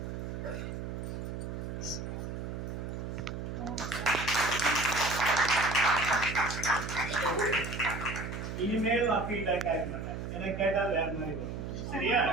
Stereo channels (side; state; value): right; noise; hum, 5 dB below the sound